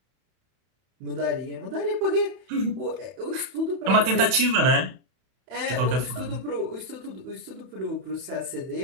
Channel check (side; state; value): left; late; 31 ms